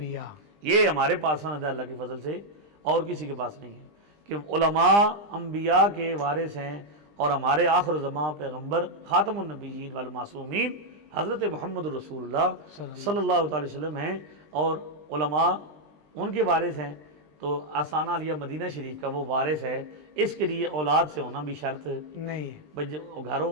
یہ ہمارے پاس سند ہے اللہ کے فضل سے، اور کسی کے پاس نہیں ہے کہ علماء انبیاء کے وارث ہیں. اور ہمارے آخر زمان پیغمبر خاتم النبیین والمعصومین حضرت محمد رسول اللہ صلی اللہ تعالی وسلم ہیں، اور علماء ان کے وارث ہیں. تو آستانہ علیہ مدینہ شریف کا وہ وارث ہے. اس کے لیے اولاد سے ہونا بھی شرط نہیں ہے. بھئی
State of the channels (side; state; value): left; late; 20 ms